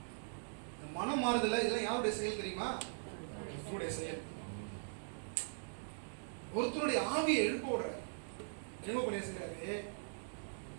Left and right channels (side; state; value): left; silent; digital silence